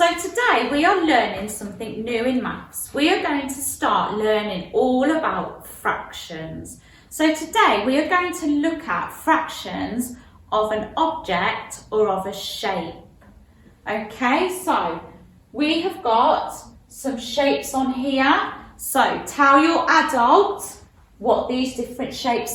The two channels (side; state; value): both; identical; correlation 1.00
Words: today we are learning something new in maths. We are going to start learning all about fractions. So today we are going to look at fractions of an object or of a shape. Okay, so we have got some shapes on here. So tell your adult what these different